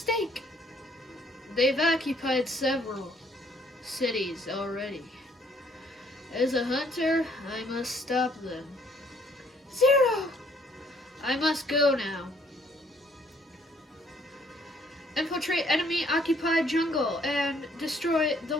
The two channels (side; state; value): both; normal; correlation 0.64